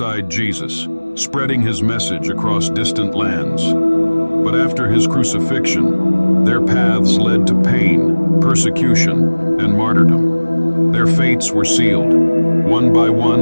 Jesus, spreading his message across distant lands. But after his crucifixion, their paths led to pain, persecution, and martyrdom. Their fates were sealed. One by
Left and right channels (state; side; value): inverted; both; correlation -1.00